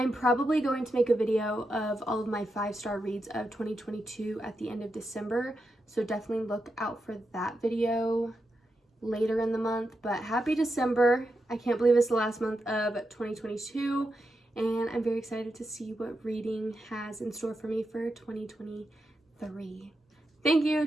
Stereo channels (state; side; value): normal; both; correlation 0.86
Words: probably going to make a video of all of my 5-star reads of 2022 at the end of December. So definitely look out for that video later in the month. But happy December. I can't believe it's the last month of 2022. and I'm very excited to see what reading has in store for me for 2023. Thank you